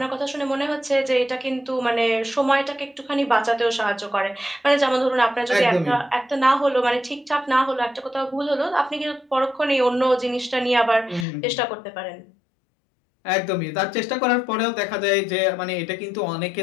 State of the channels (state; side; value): drops out; right; at 11.2 s